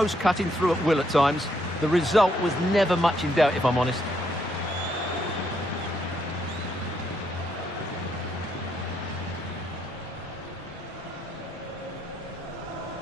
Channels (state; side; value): normal; both; correlation 0.74